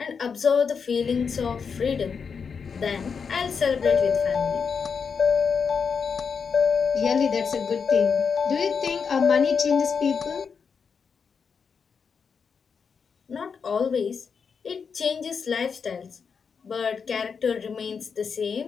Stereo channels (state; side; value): quieter; right; 6.0 dB